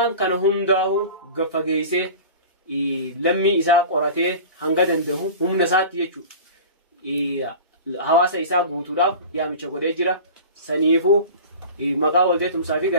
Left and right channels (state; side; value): inverted; both; correlation -0.36